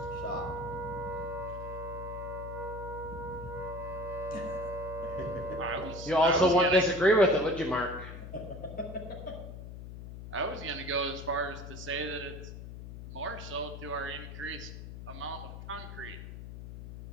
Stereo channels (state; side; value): noise; left; hum, 10 dB below the sound